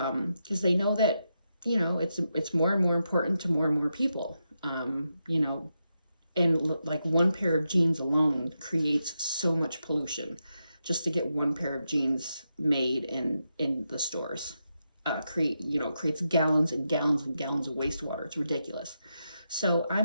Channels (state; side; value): inverted; both; correlation -0.86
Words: they know that it's more and more important to more and more people. And like one pair of jeans alone creates so much pollution just to get one pair of jeans made in the stores. Creates gallons and gallons and gallons of wastewater. It's ridiculous. So